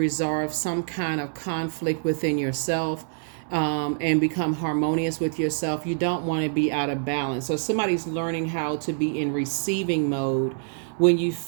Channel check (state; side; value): silent; left; digital silence